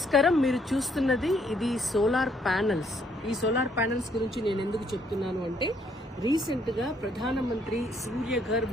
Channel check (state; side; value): normal; both; correlation 0.69